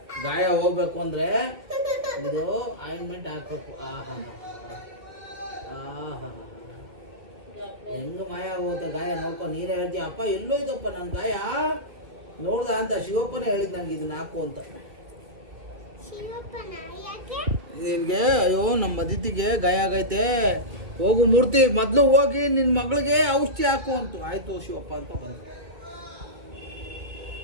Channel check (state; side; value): late; left; 2.4 ms